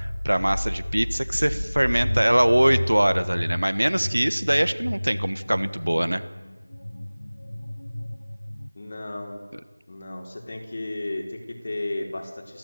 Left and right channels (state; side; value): inverted; both; correlation -1.00